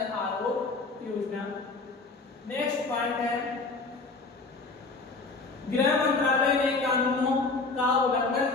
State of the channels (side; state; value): right; quieter; 3.8 dB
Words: आरोग्य योजना। नेक्स्ट पॉइंट है, गृह मंत्रालय ने कानूनों का